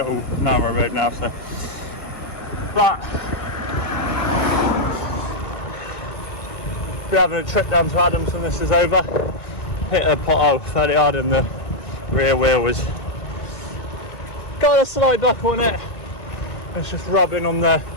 narrow road now. So, but we're having a trip down to Adams when this is over. Hit a pothole fairly hard, and the rear wheel was got a slight buckle on it. It's just rubbing on the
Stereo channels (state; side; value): late; right; 2.2 ms